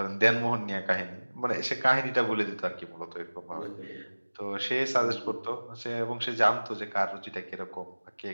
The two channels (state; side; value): inverted; both; correlation -1.00